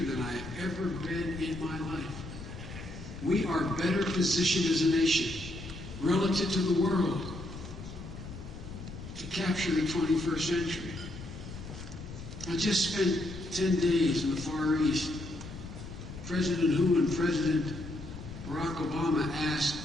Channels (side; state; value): left; noise; rumble, 11 dB below the sound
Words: than I have ever been in my life. We are better positioned as a nation relative to the world to capture the 21st century. I just spent 10 days in the Far East. President Hu and President Barack Obama